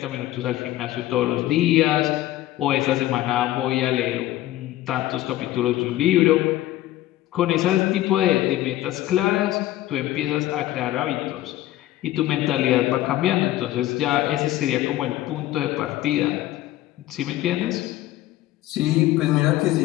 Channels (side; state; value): right; quieter; 15.0 dB